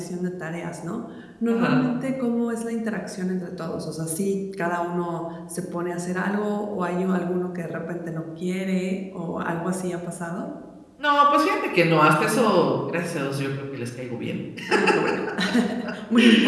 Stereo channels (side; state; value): both; identical; correlation 1.00